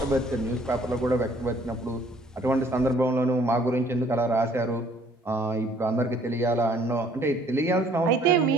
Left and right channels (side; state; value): both; normal; correlation 0.60